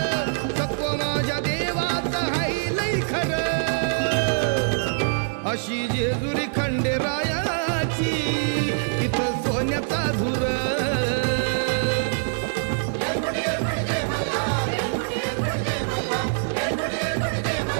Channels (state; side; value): silent; left; digital silence